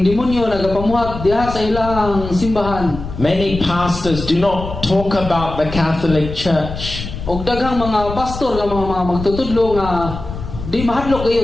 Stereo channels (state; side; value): noise; left; rumble, 9 dB below the sound